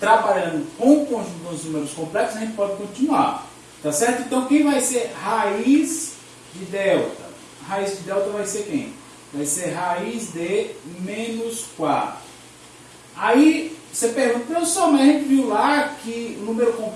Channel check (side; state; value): both; identical; correlation 1.00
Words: trabalhando com o conjunto dos números complexos, a gente pode continuar, tá certo? Então, quem vai ser raiz de delta? A raiz de delta vai ser quem? Vai ser raiz de menos 4. Aí, você pergunta, professor, mas a gente viu lá que o número